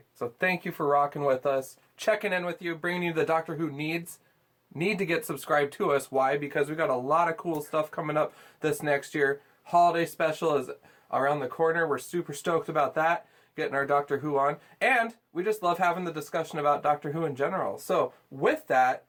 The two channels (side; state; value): both; identical; correlation 1.00